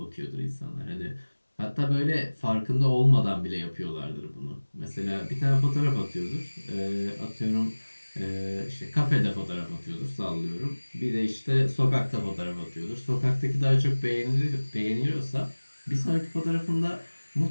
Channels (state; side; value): inverted; both; correlation -1.00